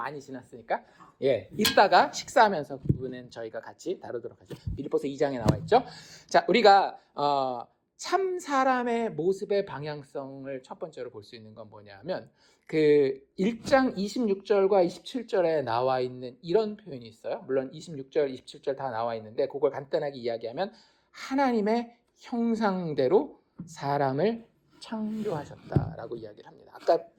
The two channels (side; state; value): both; identical; correlation 1.00